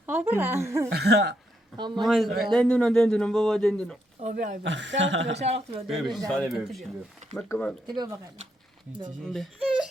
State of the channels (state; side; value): normal; both; correlation 0.78